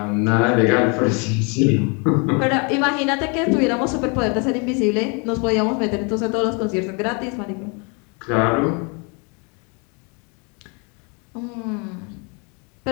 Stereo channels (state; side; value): quieter; right; 33.6 dB